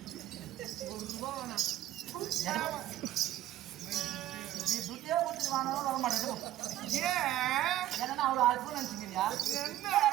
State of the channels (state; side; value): quieter; left; 13.6 dB